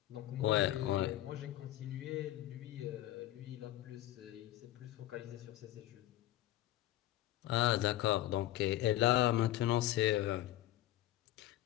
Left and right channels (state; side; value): quieter; right; 14.7 dB